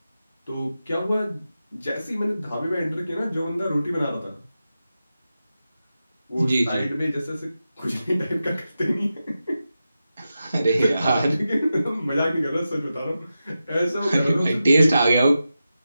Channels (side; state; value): both; inverted; correlation -0.91